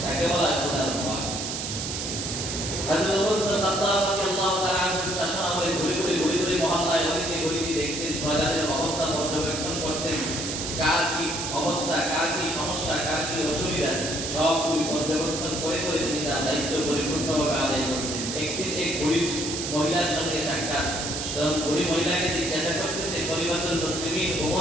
তাকে বলা হয় খোদার ভয়। হযরত ওমর ইবনে খাত্তাব রাদিয়াল্লাহু তাআলা আনহু শাসন আমলে ঘুরে ঘুরে মহল্লায় গলিতে দেখতেন, প্রজাদের অবস্থা পর্যবেক্ষণ করতেন, কার কি অবস্থা, কার কি সমস্যা, কার কি অসুবিধা, সবগুলি পর্যবেক্ষণ করে তিনি তার দায়িত্ব পরিপূর্ণভাবে আদায় করতেন। একদিন এক গরিব মহিলার সঙ্গে সাক্ষাৎ, তখন গরিব মহিলাকে জিজ্ঞাসা করতেছে, খলিফাতুল মুসলিমিন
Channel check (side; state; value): right; noise; hiss, 4 dB below the sound